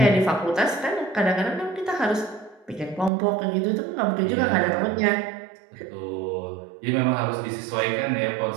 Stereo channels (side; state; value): left; drops out; at 3.1 s